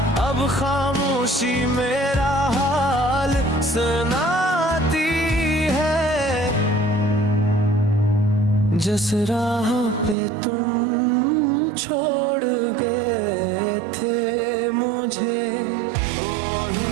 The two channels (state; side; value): drops out; left; at 10.2 s